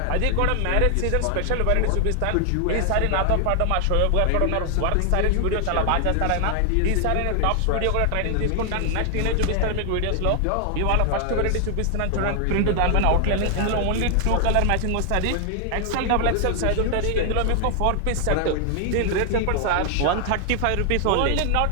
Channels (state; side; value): different; both; correlation 0.00